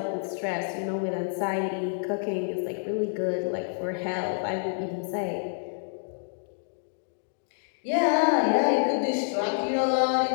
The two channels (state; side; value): silent; right; digital silence